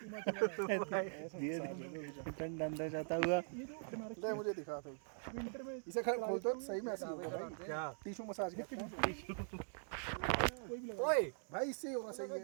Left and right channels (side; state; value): left; silent; digital silence